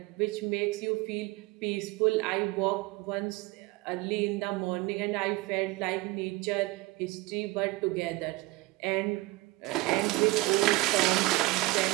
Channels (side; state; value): left; quieter; 20.7 dB